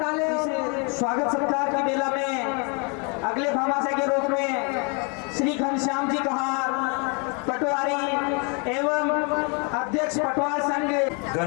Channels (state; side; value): quieter; right; 34.7 dB